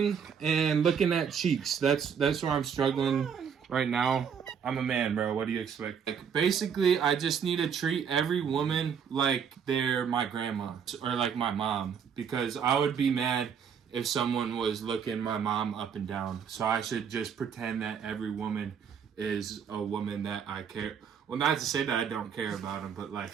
and looking at cheeks. That's where I'm struggling right now. I'm a man, bro. What do you expect? Like, basically, I just need to treat every woman like they're my grandma or like my mom, because I would be mad if someone was looking my mom up and down. So I should just pretend that every woman is a woman that I care. Well, not to say that I don't care about them, but like,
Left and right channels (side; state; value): left; quieter; 7.2 dB